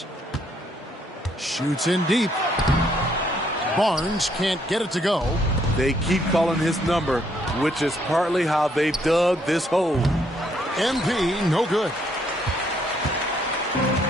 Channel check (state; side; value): normal; both; correlation 0.70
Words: Shoots in deep. Barnes can't get it to go. They keep calling his number, which is partly how they've dug this hole. MP, no good.